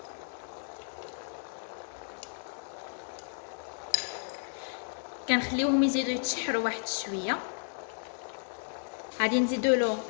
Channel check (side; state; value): right; silent; digital silence